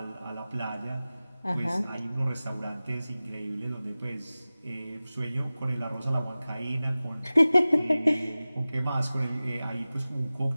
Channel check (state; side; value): inverted; both; correlation -0.97